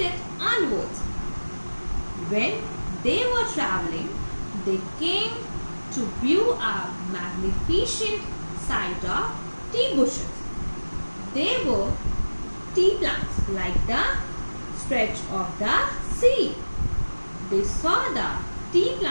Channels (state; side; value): inverted; both; correlation -1.00